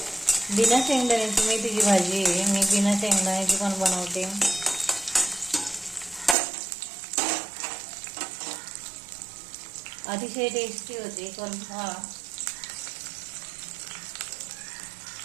बिना शेंगदाण्याची मेथीची भाजी आहे, मी बिना शेंगदाण्याची पण बनवते. अतिशय टेस्टी होते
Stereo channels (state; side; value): drops out; left; at 6.4 s